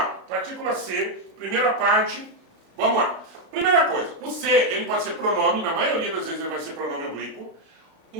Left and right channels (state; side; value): late; left; 36 ms